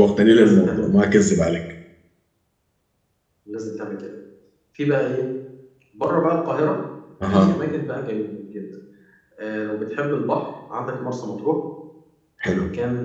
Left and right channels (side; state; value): both; identical; correlation 1.00